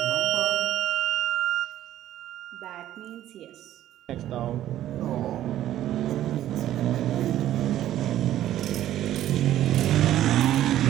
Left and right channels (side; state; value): left; quieter; 12.7 dB